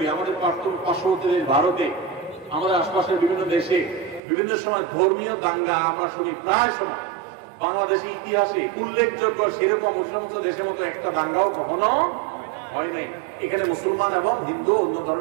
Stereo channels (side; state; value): left; drops out; at 4.2 s